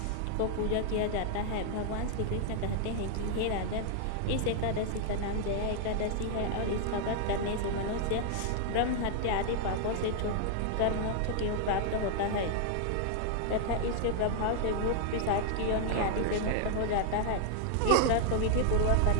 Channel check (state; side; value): different; both; correlation 0.00